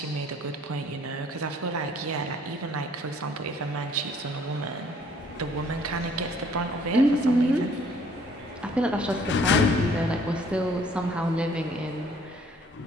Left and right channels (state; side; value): normal; both; correlation 0.59